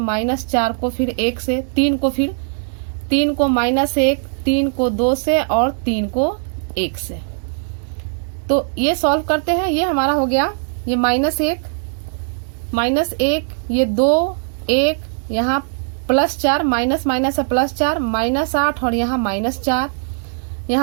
को फिर 1 से, 3 को फिर 3 को -1, 3 को 2 से और 3 को 1 से। तो ये सॉल्व करते हैं, ये हमारा हो गया, ये -1 ये 2 1, यहाँ +4 माइनस माइनस है +4 -8 और यहाँ -4,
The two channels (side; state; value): left; silent; digital silence